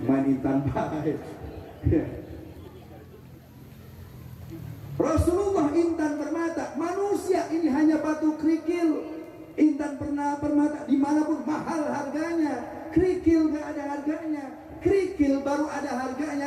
Main intan baik. Rasulullah intan permata, manusia ini hanya batu kerikil. Intan permata dimanapun mahal harganya, kerikil gak ada harganya. Kerikil baru ada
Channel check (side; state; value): both; identical; correlation 1.00